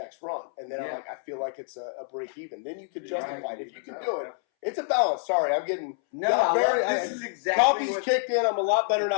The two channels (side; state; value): right; silent; 60 dB below the other